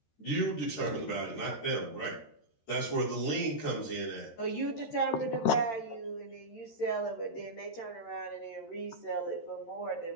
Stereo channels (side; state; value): right; late; 13 ms